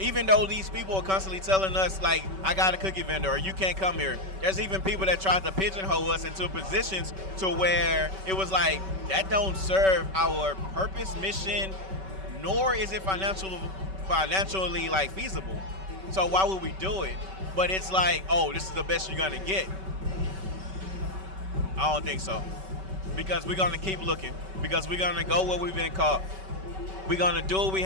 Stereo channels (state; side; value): late; left; 5.2 ms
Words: Even though these people are constantly telling us, like, I got a cookie vendor or you can't come here. There's even people that tried to pigeonhole us into positions to where it was like, that don't serve our purpose, mission, nor is it financially like feasible. So why would we do it? But it's like, oh, this is the best you're gonna get. I don't think so. Because we're gonna keep looking. Because we're gonna go where we've been caught. We're gonna do what we